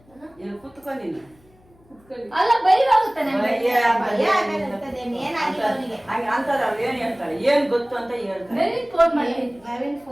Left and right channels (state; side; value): noise; left; hum, 30 dB below the sound